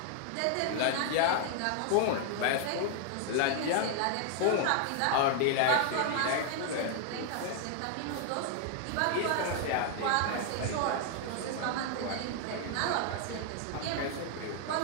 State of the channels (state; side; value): different; both; correlation 0.00